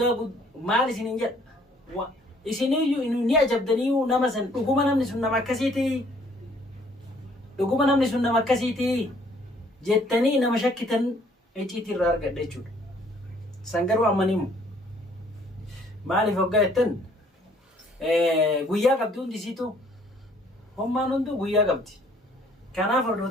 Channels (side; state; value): both; normal; correlation 0.61